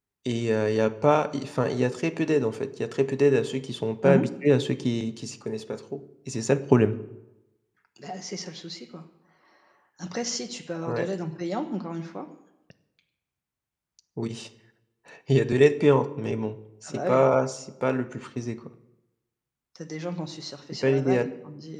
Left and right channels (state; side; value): identical; both; correlation 1.00